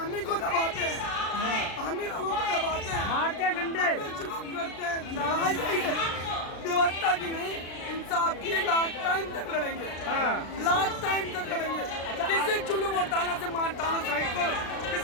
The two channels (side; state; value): right; late; 36 ms